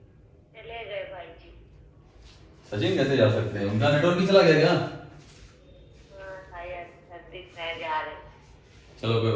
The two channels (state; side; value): identical; both; correlation 1.00